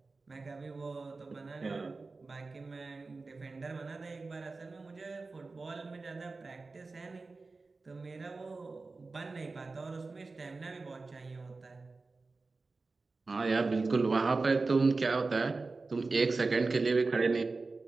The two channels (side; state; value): left; quieter; 3.8 dB